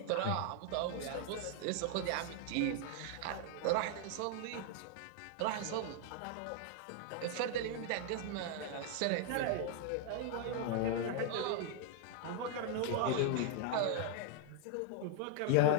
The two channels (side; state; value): both; different; correlation 0.00